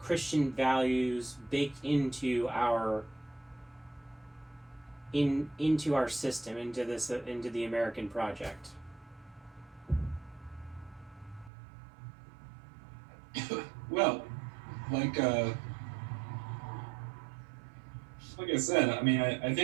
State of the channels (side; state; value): left; drops out; at 11.5 s